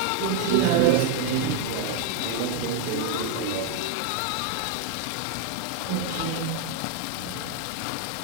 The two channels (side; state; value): both; different; correlation 0.00